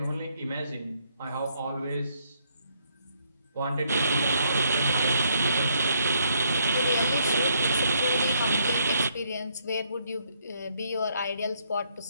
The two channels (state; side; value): inverted; both; correlation -0.72